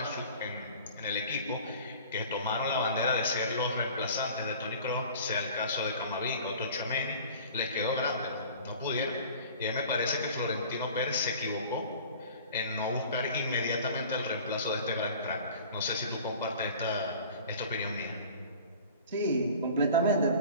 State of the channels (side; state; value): both; inverted; correlation -0.44